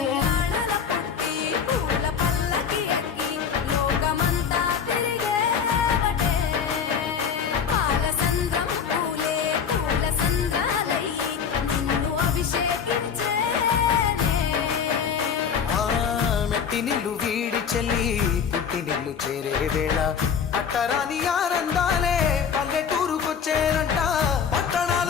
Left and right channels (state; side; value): quieter; right; 7.0 dB